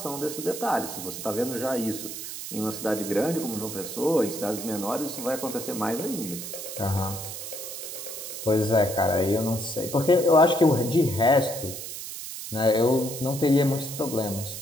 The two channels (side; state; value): right; noise; hiss, 8 dB below the sound